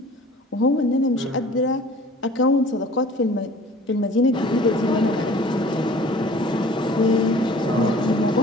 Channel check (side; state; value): both; normal; correlation 0.48